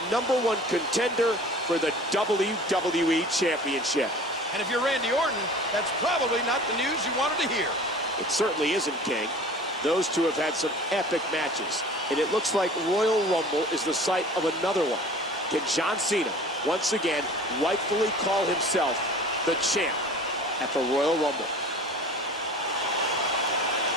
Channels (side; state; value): both; normal; correlation 0.42